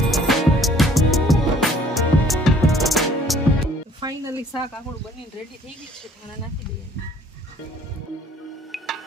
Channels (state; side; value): normal; both; correlation 0.57